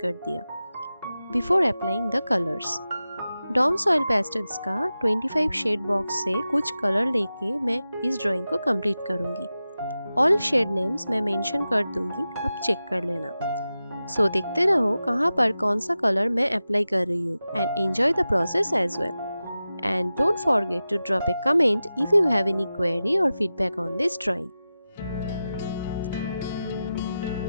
दिया before applying the colours. Doms oil pastels का 25 शेड बॉक्स से कुछ कलर लेके मैं इस ड्राइंग को कंप्लीट करूंगी। ऑल शेड नेम्स मैं मेंशन कर दूंगी, अब चेक कर लेना। सो देखते रहो कहाँ पर कौन सा कलर मैं अप्लाई कर रही हूँ and enjoy the process as well. And don't forget to drop a comment if you have any query और feedback on this drawing.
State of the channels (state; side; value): inverted; both; correlation -0.94